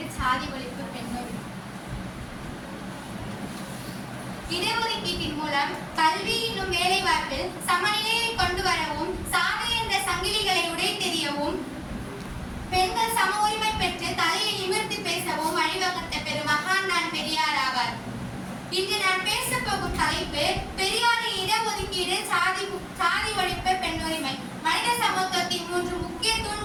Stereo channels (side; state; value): both; identical; correlation 1.00